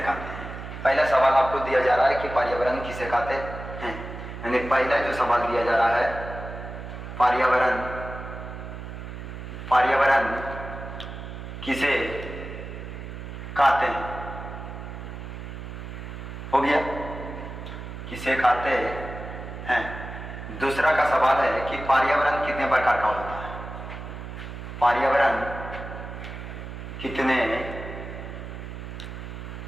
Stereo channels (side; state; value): right; noise; hum, 9 dB below the sound